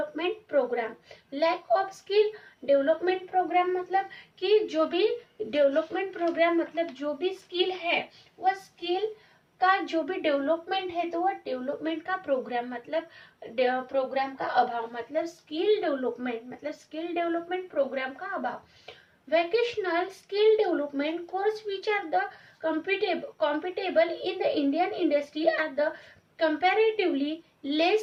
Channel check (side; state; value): both; identical; correlation 1.00